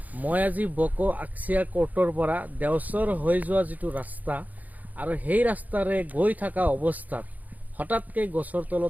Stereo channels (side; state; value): left; late; 0.079 ms